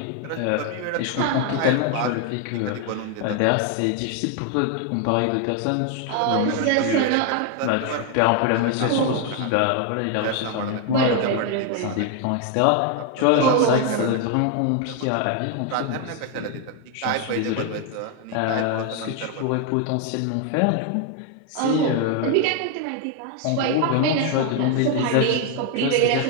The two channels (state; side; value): different; both; correlation 0.01